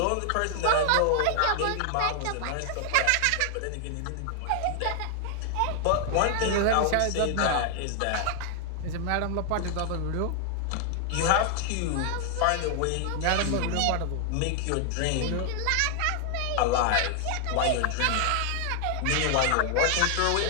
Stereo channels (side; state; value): both; different; correlation 0.00